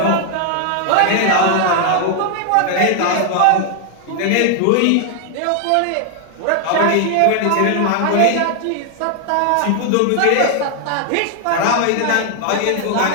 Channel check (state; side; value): different; both; correlation 0.00